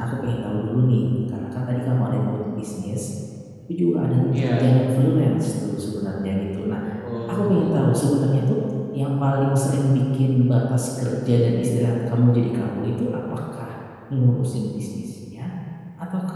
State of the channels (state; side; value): identical; both; correlation 1.00